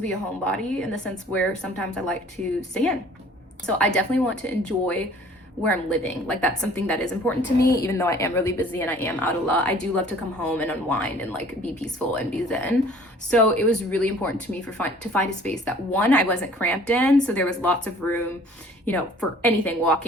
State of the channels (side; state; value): both; normal; correlation 0.52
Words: a homebody in the sense where sometimes I like to stay in. So I definitely want to enjoy where I'm living. Like, that's something that is important to me, even though I am really busy and I am out a lot. I do love to come home and unwind and, like, be peaceful and be zen. So it was really important to me to find a space that, one, I wasn't cramped in, so there was lots of room, for anything,